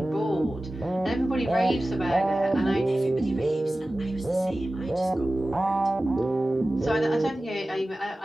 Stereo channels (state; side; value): normal; both; correlation 0.96